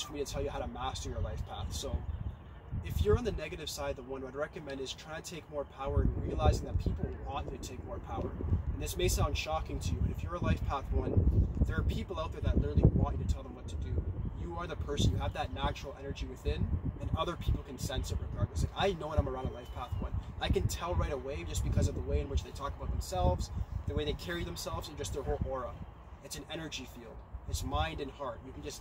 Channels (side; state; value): both; identical; correlation 1.00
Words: for me to tell you how to master your life path. So if you're on the negative side, the 1 what I'd recommend is trying to take more power and realizing that people want you to take more power. And this may sound shocking to you, but if you're a Life Path 1, there are people out there that literally want you to tell them what to do. You are the person, you have that natural energy within, and other people can sense it regardless. Like, I know when I'm around a Life Path 1. I can tell right away just because of the way in which they talk about themselves, the way they carry themselves, and just their whole aura. It's an energy field. It's mind and heart. You can